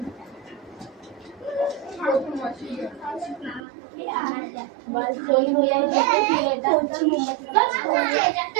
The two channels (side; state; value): left; drops out; at 3.6 s